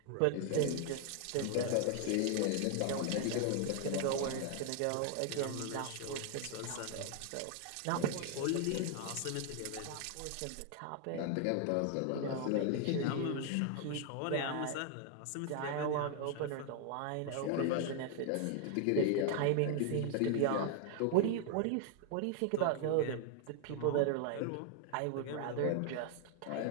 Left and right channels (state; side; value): different; both; correlation 0.00